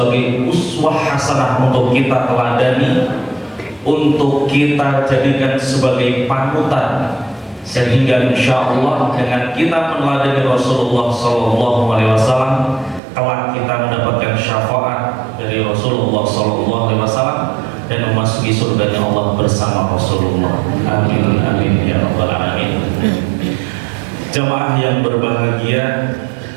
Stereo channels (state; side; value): drops out; left; at 13.0 s